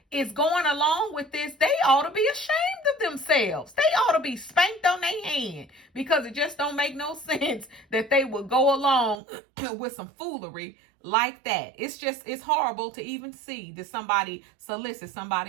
is going along with this, they ought to be ashamed of themselves. They ought to be spanked on their hand, because it just don't make no sense that they would go along with some foolery like that. It's horrible to even see that somebody solicits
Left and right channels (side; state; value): left; drops out; at 9.2 s